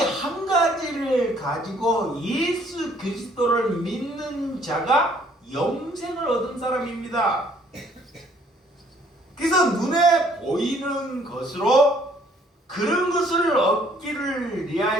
가지를 가지고 예수 그리스도를 믿는 자가 영생을 얻은 사람입니다. 그래서 눈에 보이는 것으로 그런 것을 얻기를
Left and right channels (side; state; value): both; normal; correlation 0.61